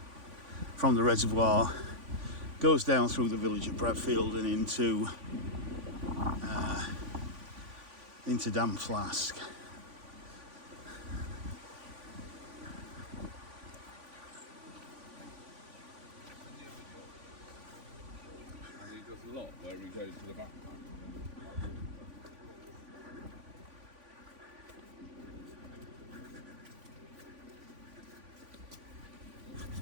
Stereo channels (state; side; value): late; left; 3.5 ms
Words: from the reservoir goes down through the village of Bradfield and into Dam Flask. And he does a lot where he goes to the backpack.